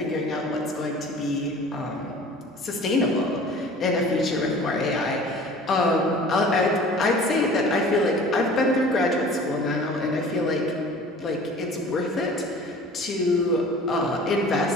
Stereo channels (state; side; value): normal; both; correlation 0.45